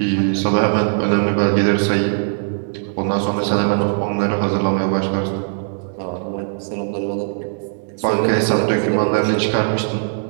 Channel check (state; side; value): silent; left; 66 dB below the other